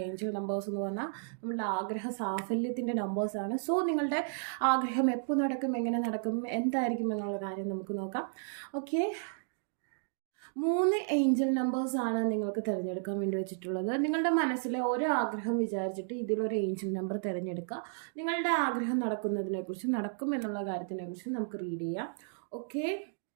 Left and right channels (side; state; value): left; silent; digital silence